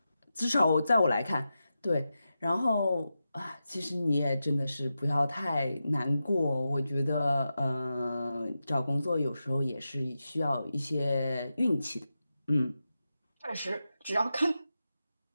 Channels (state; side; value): inverted; both; correlation -0.90